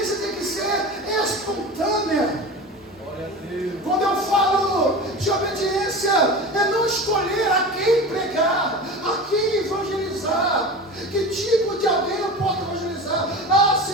tem que ser espontânea. Quando eu falo de obediência, é não escolher a quem pregar, a quem evangelizar, que tipo de alguém eu posso evangelizar.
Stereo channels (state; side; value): normal; both; correlation 0.31